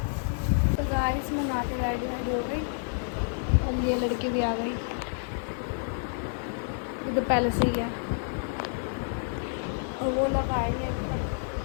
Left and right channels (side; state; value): right; silent; digital silence